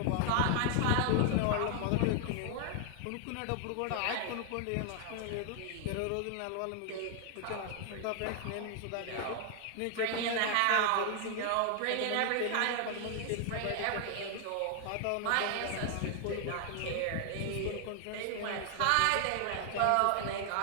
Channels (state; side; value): different; both; correlation 0.00